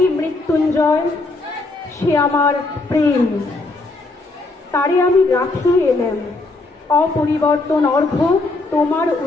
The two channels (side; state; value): right; quieter; 3.2 dB